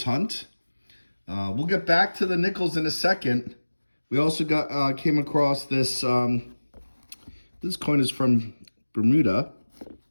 hunt. We'll get back to the nickels in a second. We also came across this, this coin is from Bermuda,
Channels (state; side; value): inverted; both; correlation -1.00